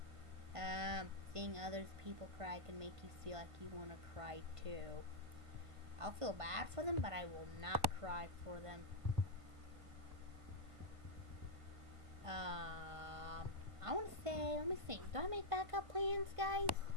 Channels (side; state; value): left; late; 1.5 ms